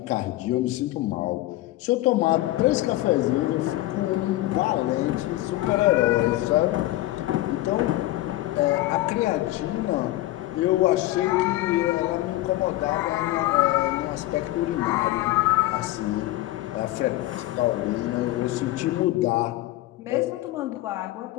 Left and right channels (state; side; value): quieter; right; 16.7 dB